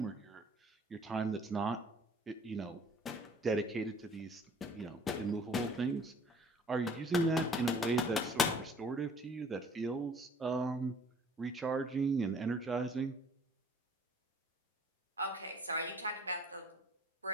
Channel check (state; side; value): normal; both; correlation 0.54